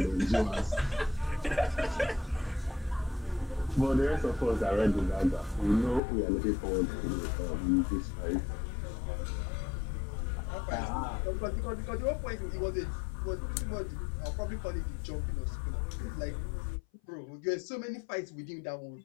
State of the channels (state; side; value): drops out; right; at 6.0 s